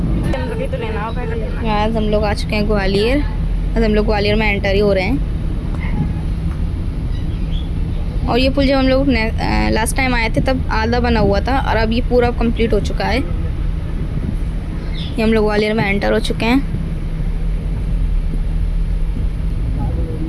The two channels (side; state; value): both; identical; correlation 1.00